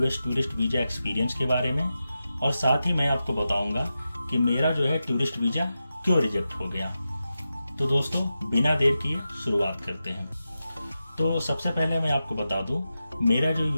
टूरिस्ट वीज़ा एक्सपीरियंस के बारे में और साथ ही मैं आपको बताऊंगा कि मेरा जो है टूरिस्ट वीज़ा क्यों रिजेक्ट हो गया। तो दोस्तों, बिना देर किए शुरुआत करते हैं। तो सबसे पहले मैं आपको बता दूं, मेरा जो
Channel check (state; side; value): inverted; both; correlation -0.91